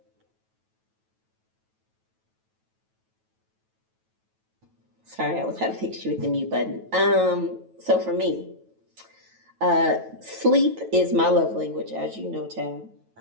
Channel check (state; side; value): late; left; 9.2 ms